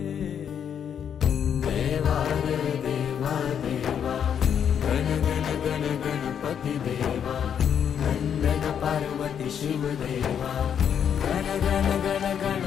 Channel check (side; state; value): right; quieter; 8.3 dB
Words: देवा रे देवा देवा गण गण गण गणपती देवा नंदन पार्वती शिव देवा गण गण गण